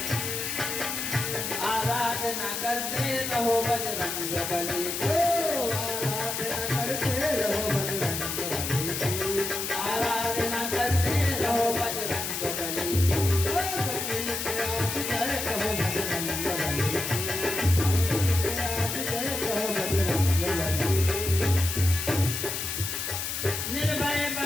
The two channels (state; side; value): noise; left; hiss, 3 dB below the sound